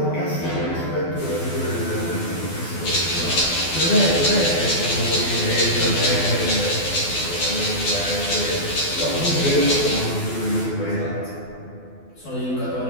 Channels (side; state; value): right; late; 12 ms